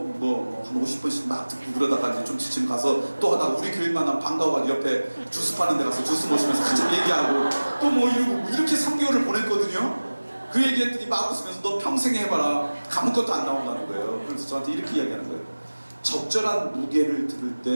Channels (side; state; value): both; inverted; correlation -1.00